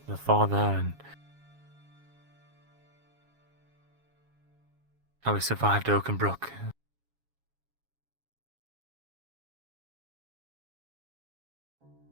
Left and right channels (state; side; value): late; left; 7.3 ms